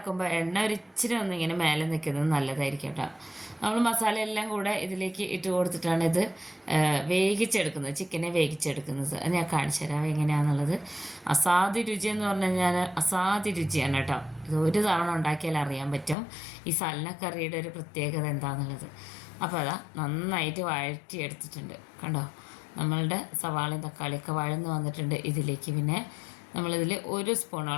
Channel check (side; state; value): right; drops out; at 16.2 s